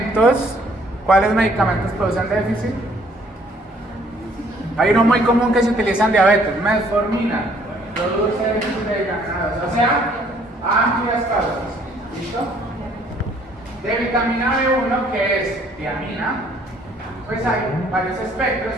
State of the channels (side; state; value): both; normal; correlation 0.61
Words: ¿Cuáles medicamentos producen déficit? Hay uno muy común que se utiliza en diabetes, metformina, produce déficit de vitamina, o sea, amplias causas. ¿Listo? De vitamina B1, que es tiamina, pues hay varios espectros,